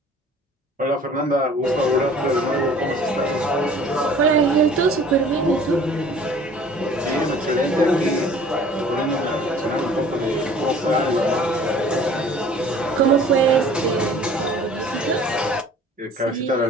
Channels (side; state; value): both; normal; correlation 0.50